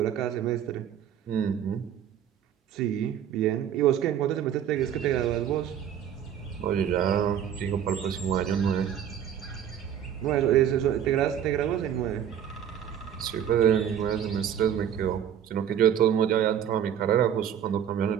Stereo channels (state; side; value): quieter; left; 9.4 dB